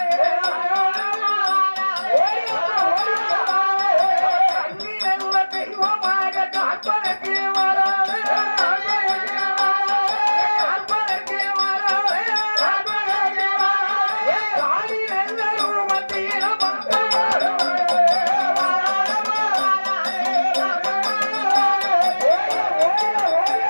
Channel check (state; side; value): inverted; both; correlation -1.00